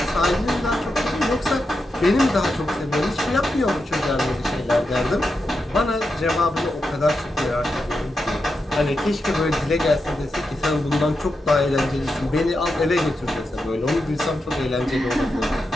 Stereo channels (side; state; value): both; normal; correlation 0.87